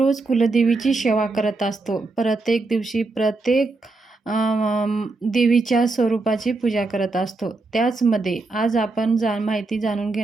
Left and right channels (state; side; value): quieter; left; 3.5 dB